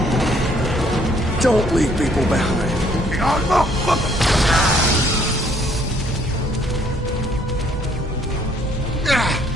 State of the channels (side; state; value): both; normal; correlation 0.64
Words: don't leave people behind.